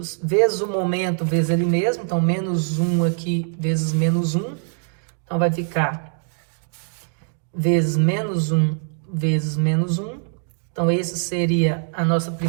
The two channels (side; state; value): left; silent; 64 dB below the other